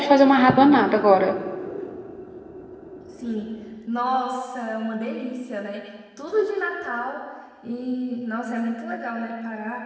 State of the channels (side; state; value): both; identical; correlation 1.00